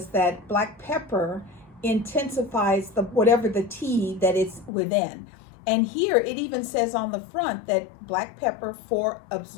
that black pepper intensifies whatever the tea that it's within. And here it even says on the front that black pepper for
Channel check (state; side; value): drops out; right; at 4.7 s